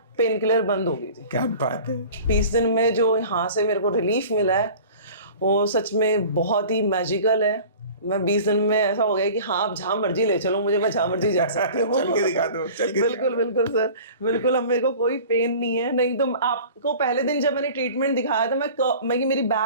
पेन किलर बंद हो गई थी। क्या बात है। 20 दिन में जो यहाँ से मेरे को रिलीफ मिला है वो सच में बहुत ही मैजिकल है। मैं 20 दिन में ऐसा हो गया कि हाँ, आप जहाँ मर्जी ले चलो मुझे, मैं जहाँ मर्जी जा सकती हूँ। चल के दिखा दो, चल के बिल्कुल बिल्कुल सर, बिल्कुल। अब मेरे को कोई पेन नहीं है। नहीं तो आपको पहले दिन जब मैंने ट्रीटमेंट दिखाया था, मैं मेरी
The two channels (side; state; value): both; inverted; correlation -0.43